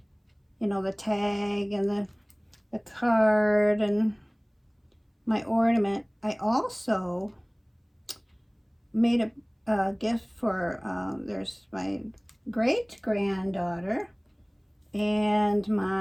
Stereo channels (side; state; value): both; identical; correlation 1.00